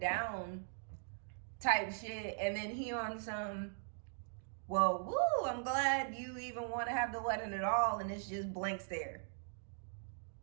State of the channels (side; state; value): left; silent; digital silence